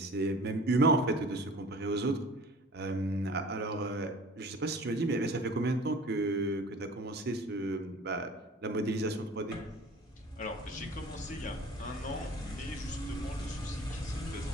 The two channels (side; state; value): both; normal; correlation 0.45